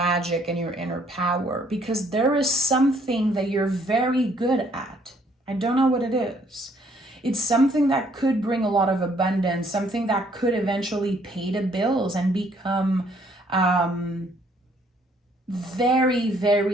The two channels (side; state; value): both; normal; correlation 0.65